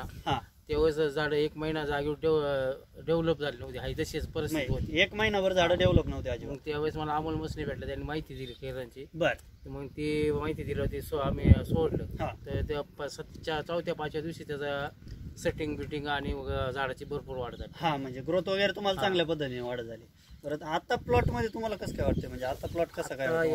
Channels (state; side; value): identical; both; correlation 1.00